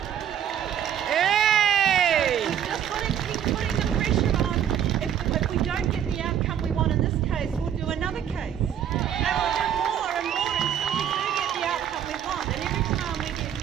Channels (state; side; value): quieter; left; 9.6 dB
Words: Hey! So we've just got to keep putting the pressure on. If we don't get the outcome we want in this case, we'll do another case. And we'll do more and more until we do get the outcome we want. And every time we get